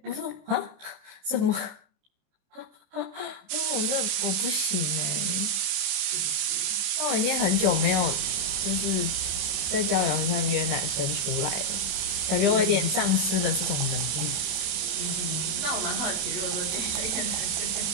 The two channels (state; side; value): late; left; 27 ms